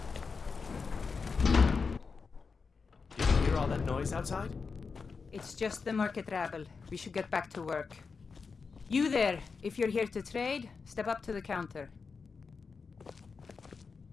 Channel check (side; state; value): right; quieter; 5.0 dB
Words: Noise outside? It's just the market rabble. We should get back to work. You there, if you're here to trade, step up to the counter.